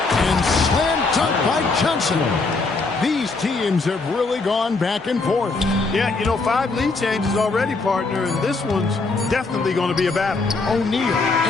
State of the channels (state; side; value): quieter; right; 3.8 dB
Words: And slam dunk by Johnson. These teams have really gone back and forth. Yeah, you know, 5 lead changes already, partner, and this one's definitely going to be a battle. O'Neal,